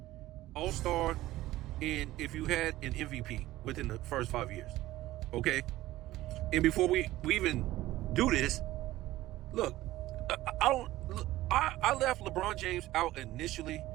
all-star, and if you had an MVP within the first 5 years, okay? And before we even do this, look, I left LeBron James out initially,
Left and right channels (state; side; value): quieter; left; 16.2 dB